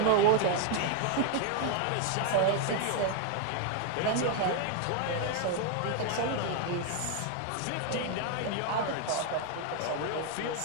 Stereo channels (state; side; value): different; both; correlation 0.00